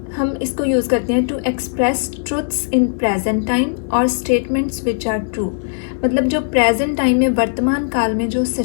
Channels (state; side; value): silent; right; 67 dB below the other